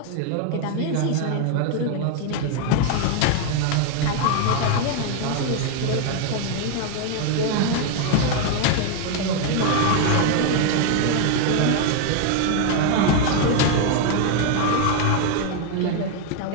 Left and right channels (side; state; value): both; different; correlation 0.00